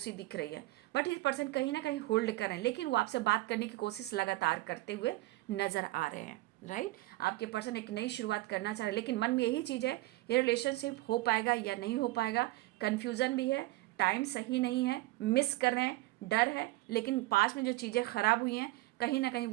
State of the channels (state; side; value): quieter; left; 19.1 dB